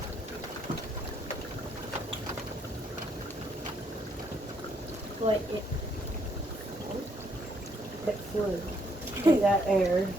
Like it flew. Like that air.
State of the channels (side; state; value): both; normal; correlation 0.71